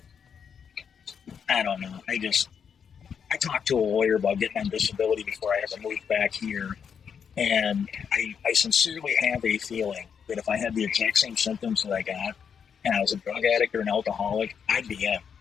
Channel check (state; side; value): quieter; right; 7.1 dB